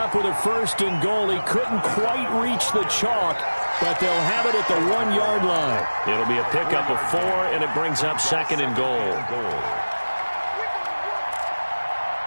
with a first and goal. He couldn't quite reach the chalk, but they'll have it at the 1-yard line. It'll be a pickup of 4, and it brings up second and goal.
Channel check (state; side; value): inverted; both; correlation -1.00